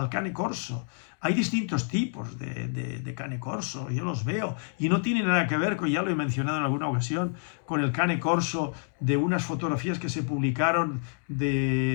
Cane Corso. Hay distintos tipos de Cane Corso, yo los veo, y no tiene nada que ver, ya lo he mencionado en alguna ocasión, con el Cane Corso de unas fotografías que se publicaron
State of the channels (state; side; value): silent; right; 57 dB below the other